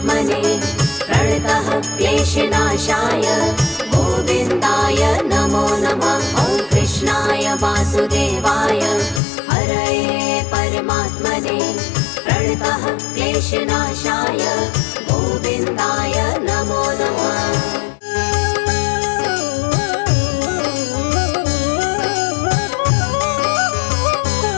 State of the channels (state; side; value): drops out; right; at 9.2 s